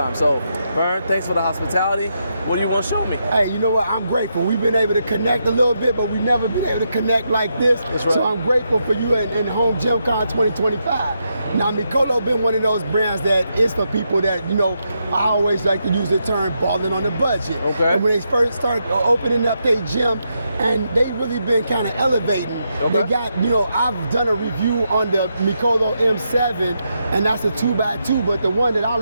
So, Vern, thanks for the hospitality. What do you want to show me? Hey, you know what? I'm grateful. We've been able to connect a little bit, but we've never been able to connect like this. That's right. So I'm grateful for you and HomeGymCon 2025. Now, Mikolo been one of those brands that is for people that, I always like to use the term balling on the budget. Okay. And when they first started opening up their gym, and they really been kind of elevating. Okay. They got, I've done a review on the Mikolo M7, and that's a 2x2, but the one that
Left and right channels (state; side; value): inverted; both; correlation -0.82